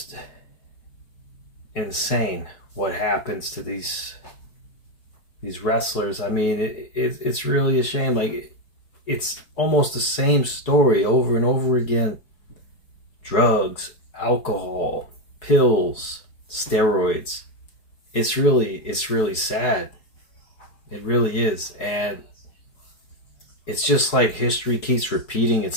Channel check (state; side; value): late; right; 4.8 ms